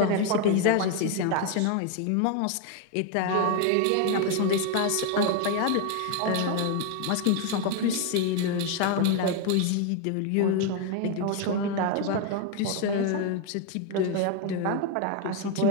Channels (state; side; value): different; both; correlation 0.01